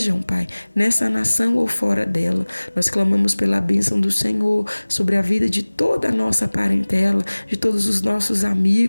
Pai, nessa nação ou fora dela. Nós clamamos pela bênção do Senhor sobre a vida de toda a nossa parentela, de todos os nossos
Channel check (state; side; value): inverted; both; correlation -1.00